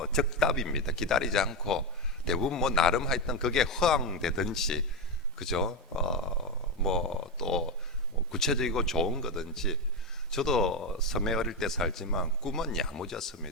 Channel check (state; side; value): normal; both; correlation 0.11